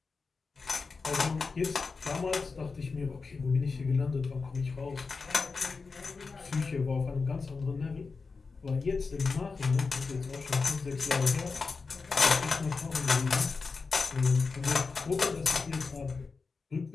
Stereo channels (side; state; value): right; quieter; 4.5 dB